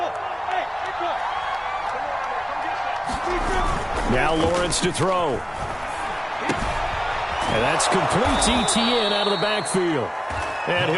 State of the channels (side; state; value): both; identical; correlation 1.00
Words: Now Lawrence to throw. And that's complete ETN out of the backfield. And